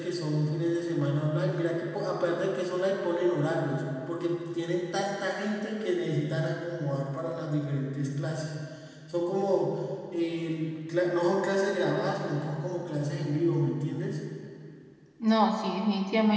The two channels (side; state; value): both; identical; correlation 1.00